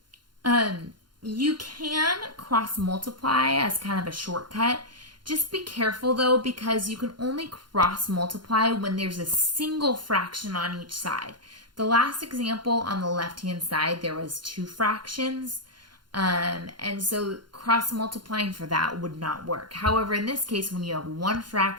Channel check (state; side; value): late; left; 0.71 ms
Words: You can cross multiply as kind of a shortcut. Just be careful though, because you can only cross multiply when there's a single fraction on each side. The last example on the left-hand side, there was 2 fractions. And so cross multiplying for that would not work. However, in this case, when you have one